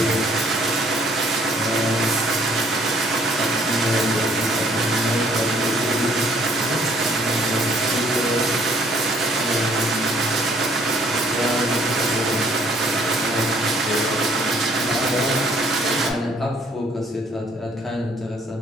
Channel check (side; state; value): both; normal; correlation 0.61